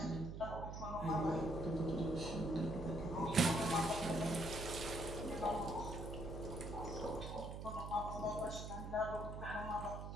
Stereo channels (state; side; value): noise; right; hum, 7 dB below the sound